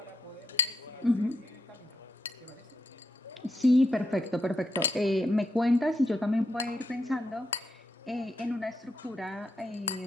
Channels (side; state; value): both; normal; correlation 0.82